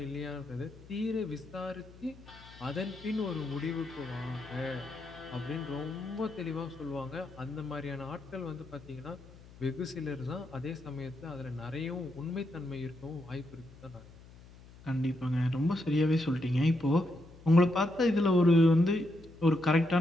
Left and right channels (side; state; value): left; noise; hum, 21 dB below the sound